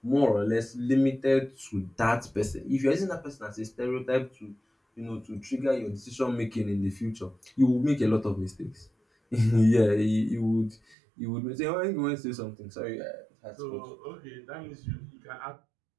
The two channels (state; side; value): drops out; left; at 11.0 s